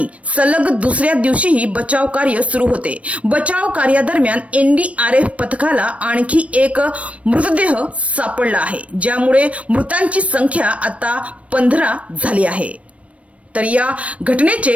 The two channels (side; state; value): left; late; 0.064 ms